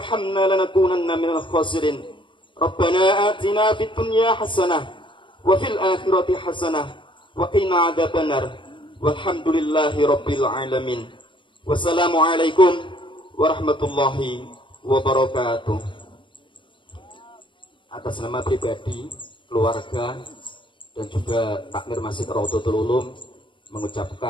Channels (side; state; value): right; late; 0.24 ms